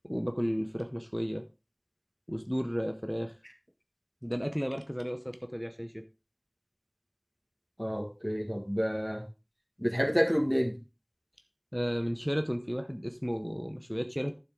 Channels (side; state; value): both; identical; correlation 1.00